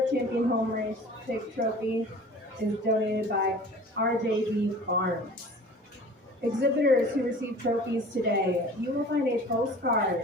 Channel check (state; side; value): normal; both; correlation 0.44